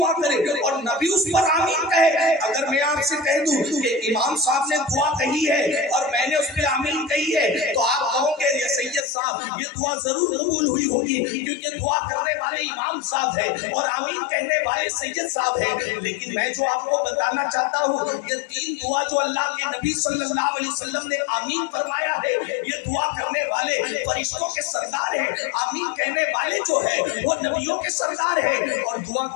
करे और नबी उस पर आमीन कहे। अगर मैं आपसे कह दूं कि इमाम साहब ने दुआ कही है और मैंने उस पर आमीन कही है तो आप कहोगे ये सैयद साहब ये दुआ जरूर कबूल हुई होगी, क्योंकि दुआ करने वाले इमाम साहब है और आमीन कहने वाले सैयद साहब है। लेकिन मैं जो आपको बताना चाहता हूँ, ये तीन दुआ जो अल्लाह के नबी सल्लल्लाहु अलैहि वसल्लम ने आमीन फरमाया है, ये दुआ करने वाले फरिश्तों के सरदार है। आमीन कहने वाले जो है वो नबियों के सरदार है। और दुआ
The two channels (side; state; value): right; drops out; at 9.1 s